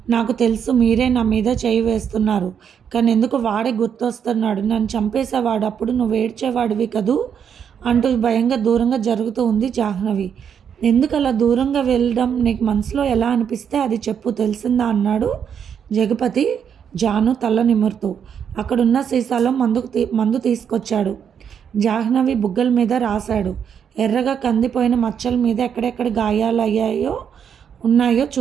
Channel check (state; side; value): quieter; left; 7.9 dB